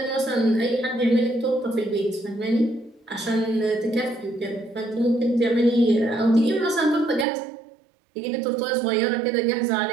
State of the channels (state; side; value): drops out; left; at 7.2 s